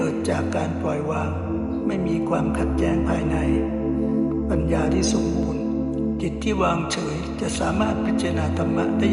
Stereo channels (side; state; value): both; identical; correlation 1.00